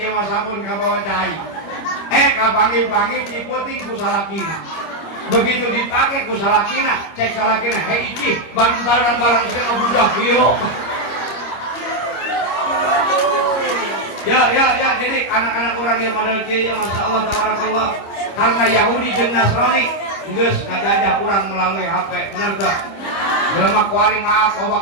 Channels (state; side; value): late; right; 25 ms